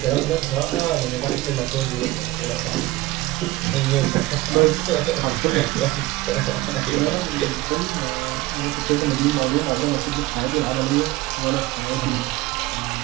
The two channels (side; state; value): left; quieter; 18.5 dB